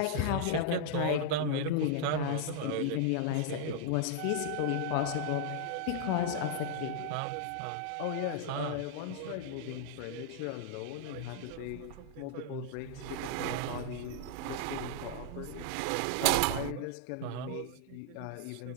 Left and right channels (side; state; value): both; different; correlation -0.01